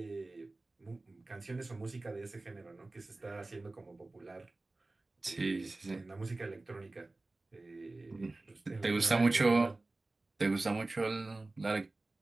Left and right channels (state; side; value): quieter; left; 3.1 dB